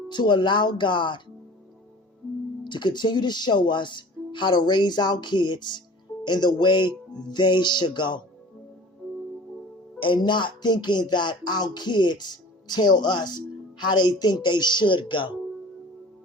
to allow God to continue to show us how to raise our kids in the way they should go. And not thinking that our kids tell us how they think they should go.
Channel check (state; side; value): normal; both; correlation 0.43